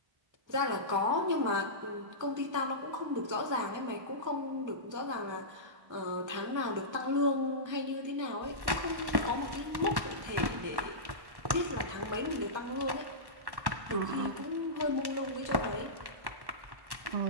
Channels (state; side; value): late; left; 1.1 ms